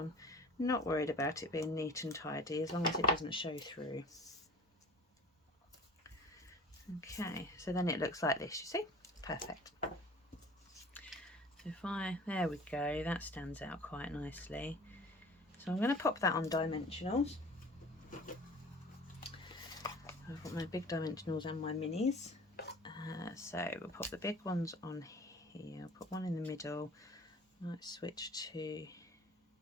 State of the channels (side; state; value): both; normal; correlation 0.43